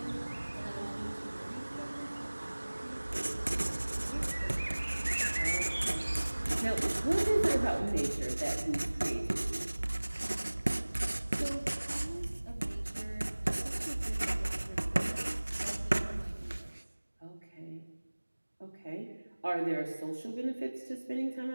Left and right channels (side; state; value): both; inverted; correlation -1.00